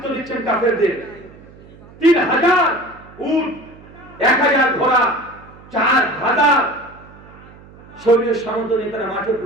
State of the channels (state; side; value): noise; right; hum, 22 dB below the sound